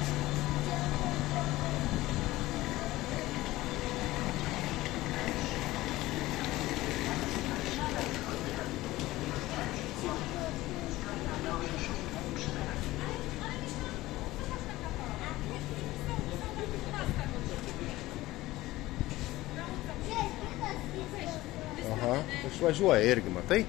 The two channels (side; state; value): right; quieter; 17.7 dB